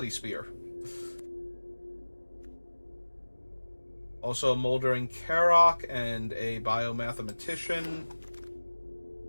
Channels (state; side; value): inverted; both; correlation -1.00